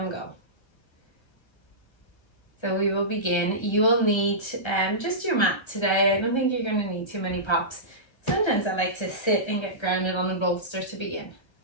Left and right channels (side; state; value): right; late; 1.3 ms